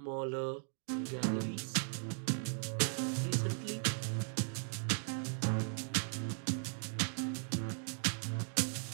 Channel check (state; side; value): silent; left; 52 dB below the other